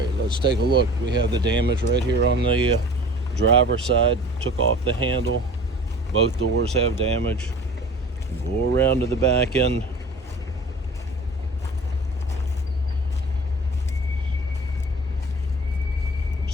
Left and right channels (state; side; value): normal; both; correlation 0.43